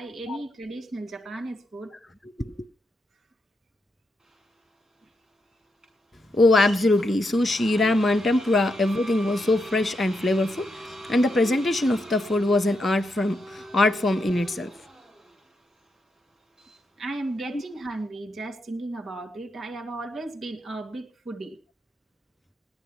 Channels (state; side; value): normal; both; correlation 0.83